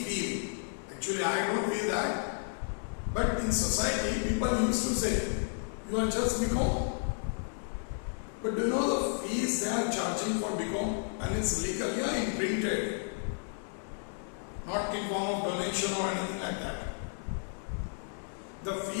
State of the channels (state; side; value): silent; right; digital silence